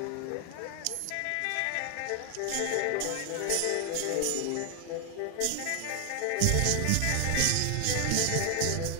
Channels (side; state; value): both; different; correlation 0.00